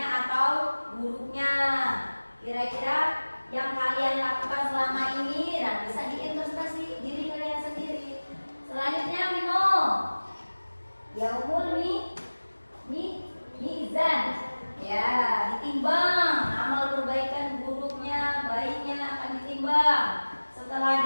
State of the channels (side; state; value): both; inverted; correlation -1.00